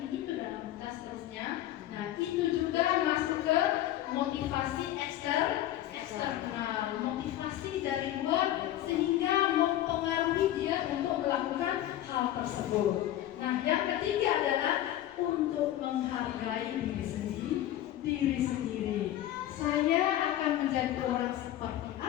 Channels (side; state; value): right; quieter; 13.2 dB